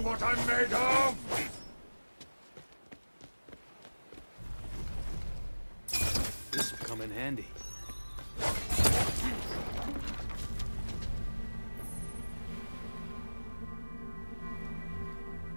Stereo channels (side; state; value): both; inverted; correlation -1.00